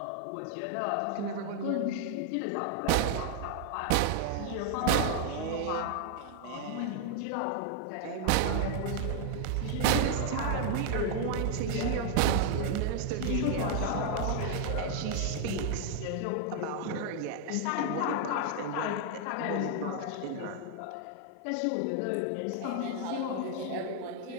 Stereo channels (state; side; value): different; both; correlation 0.00